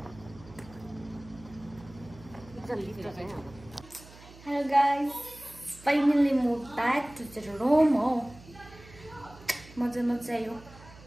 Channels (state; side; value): noise; right; hum, 20 dB below the sound